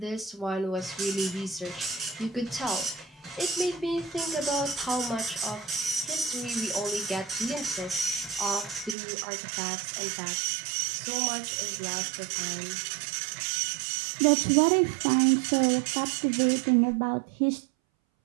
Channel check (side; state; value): left; drops out; at 9.0 s